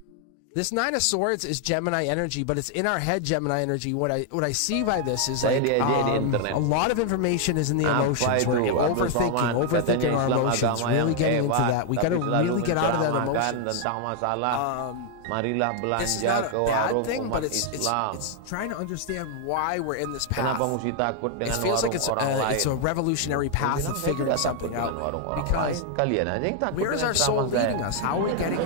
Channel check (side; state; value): both; different; correlation 0.00